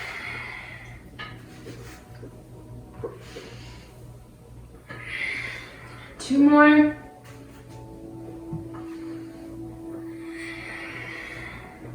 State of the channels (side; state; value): both; identical; correlation 1.00